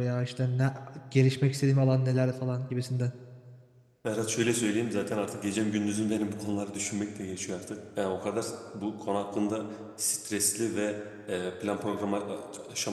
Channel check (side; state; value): both; identical; correlation 1.00